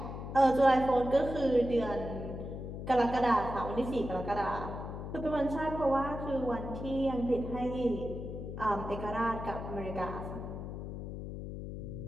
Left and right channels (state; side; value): noise; left; hum, 7 dB below the sound